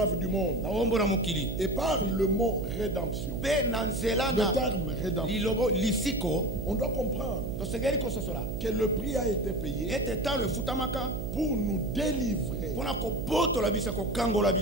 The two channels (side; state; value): right; noise; hum, 4 dB below the sound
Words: du monde. Et par le mot rédemption, le terme rédemption, on doit comprendre que le prix a été payé pour nous délivrer